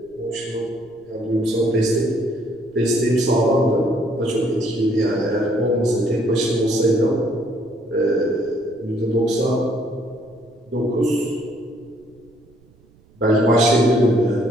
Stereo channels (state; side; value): noise; right; rumble, 30 dB below the sound